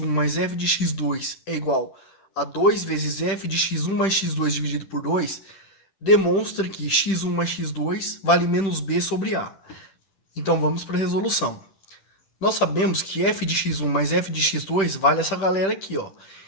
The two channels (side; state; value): right; late; 10 ms